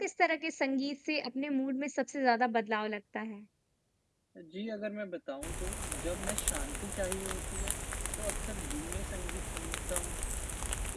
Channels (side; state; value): both; identical; correlation 1.00